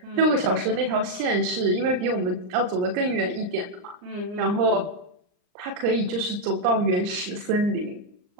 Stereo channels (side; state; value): left; late; 39 ms